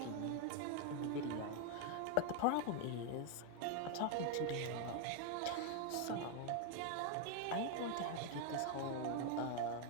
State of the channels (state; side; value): different; both; correlation 0.01